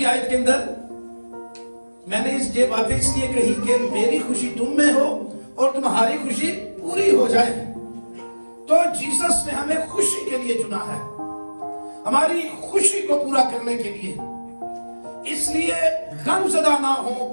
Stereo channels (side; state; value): both; inverted; correlation -1.00